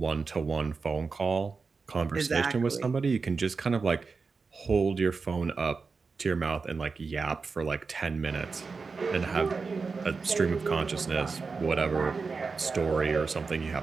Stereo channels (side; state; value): left; quieter; 4.6 dB